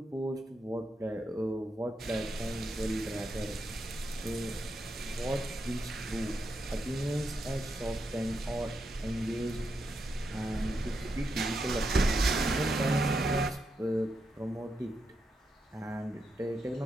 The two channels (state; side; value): normal; both; correlation 0.84